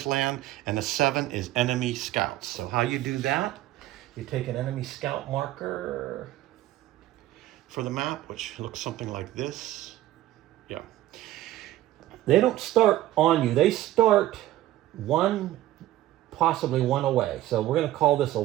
land, and the 7 is enemy scouts. So how you do that, you take an enemy scout marker for the map, which looks something like this. Yeah. They don't start on you. They start possibly one away. So we're going to call this a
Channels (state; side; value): quieter; left; 14.8 dB